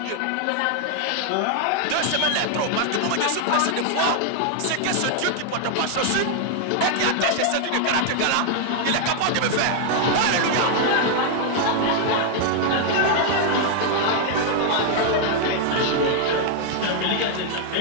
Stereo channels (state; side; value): different; both; correlation 0.00